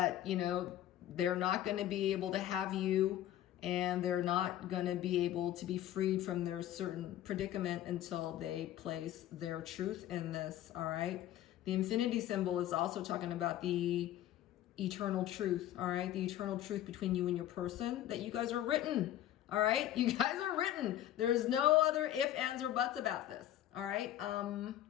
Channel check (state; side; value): quieter; right; 12.6 dB